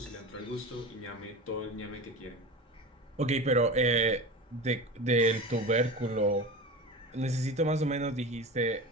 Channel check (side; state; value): both; normal; correlation 0.30